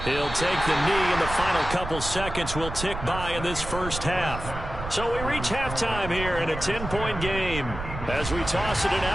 He'll take the knee, and the final couple seconds will tick by in this first half. So we reach halftime here in a 10-point game. As we toss it an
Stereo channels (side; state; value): right; noise; rumble, 8 dB below the sound